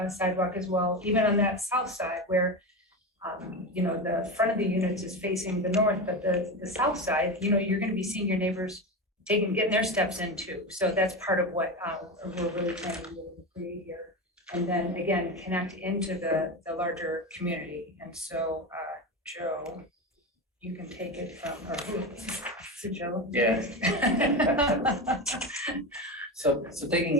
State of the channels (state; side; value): normal; both; correlation 0.20